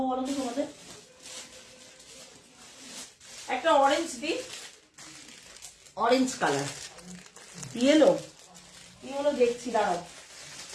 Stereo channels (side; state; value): both; identical; correlation 1.00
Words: বলো তো তোমাদের? একটা অরেঞ্জ দিই, অরেঞ্জ কালার, ইয়েলো দেখছি, দাঁড়াও